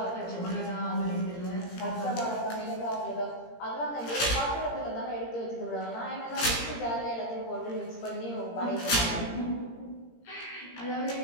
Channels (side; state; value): right; late; 17 ms